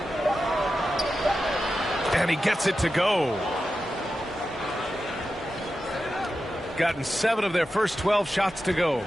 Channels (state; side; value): normal; both; correlation 0.91